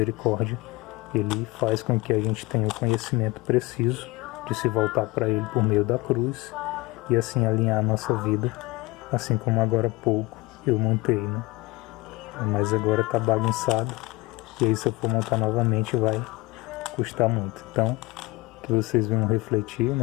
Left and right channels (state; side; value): quieter; right; 22.3 dB